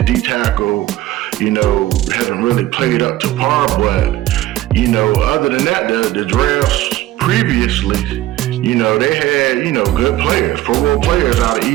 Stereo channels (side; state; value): left; quieter; 15.1 dB